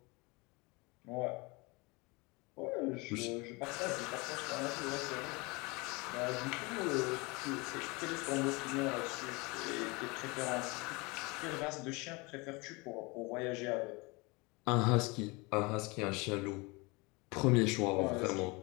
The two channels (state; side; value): quieter; right; 26.5 dB